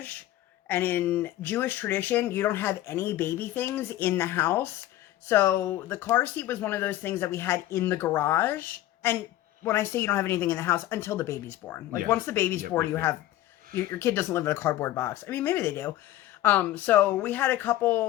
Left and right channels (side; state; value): right; quieter; 14.4 dB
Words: and in Jewish tradition, you don't have any baby things in the house. So the car seat was one of those things that we had in the garage. And when I say you don't have anything in the house, until the baby's born. Like, once the baby's born, you have... Your kid doesn't live in a cardboard box. I mean, maybe they do. So we had a